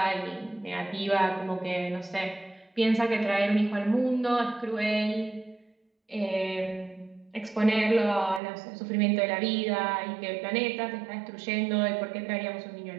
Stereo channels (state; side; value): drops out; left; at 8.4 s